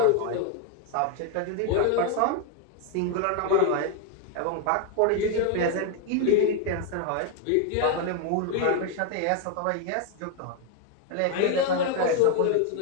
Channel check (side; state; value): both; different; correlation 0.01